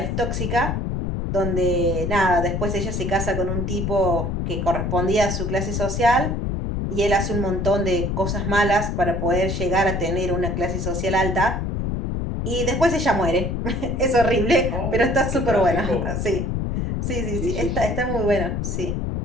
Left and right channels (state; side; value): noise; left; rumble, 1 dB below the sound